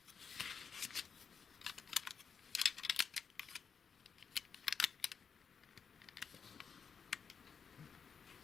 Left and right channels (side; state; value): right; quieter; 6.4 dB